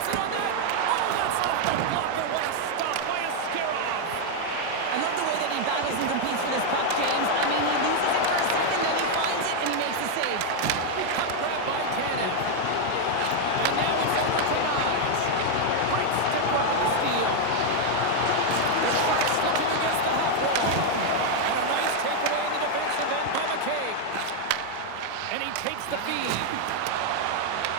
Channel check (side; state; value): both; different; correlation 0.00